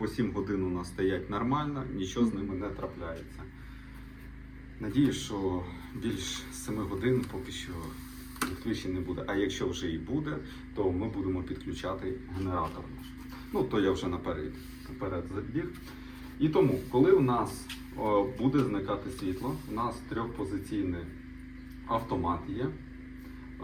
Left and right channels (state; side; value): identical; both; correlation 1.00